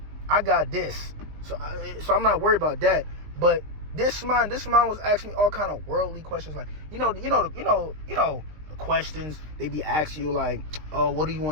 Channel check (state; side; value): late; left; 19 ms